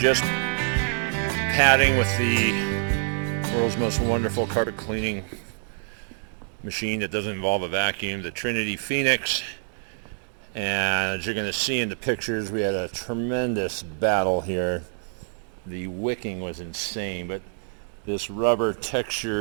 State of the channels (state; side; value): silent; left; 61 dB below the other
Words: padding with the world's most wonderful carpet cleaning machine that doesn't involve a vacuum, the Trinity Phoenix. And as you're going to see in the pictures, we had a tremendous battle here. The wicking was insane, but this rubber